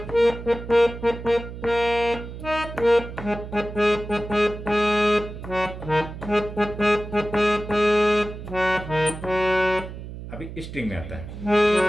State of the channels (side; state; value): right; noise; hum, 11 dB below the sound